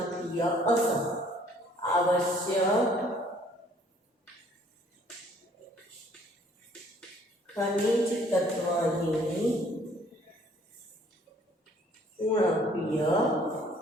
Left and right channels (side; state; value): both; normal; correlation 0.59